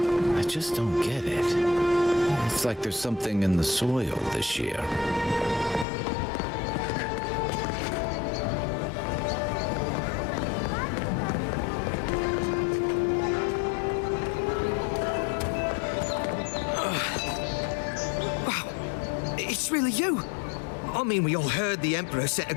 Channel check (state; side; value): drops out; right; at 5.9 s